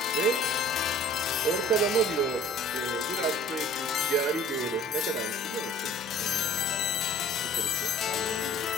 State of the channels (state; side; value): normal; both; correlation 0.49